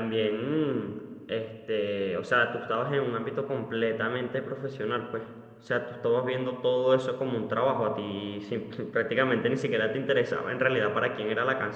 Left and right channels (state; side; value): identical; both; correlation 1.00